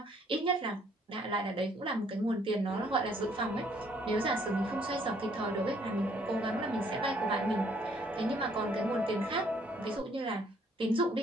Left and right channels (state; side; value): normal; both; correlation 0.64